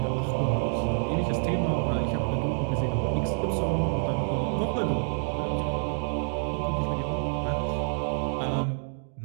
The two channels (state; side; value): silent; left; digital silence